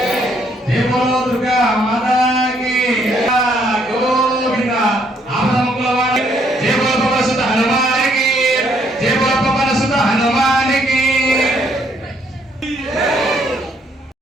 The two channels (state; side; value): normal; both; correlation 0.68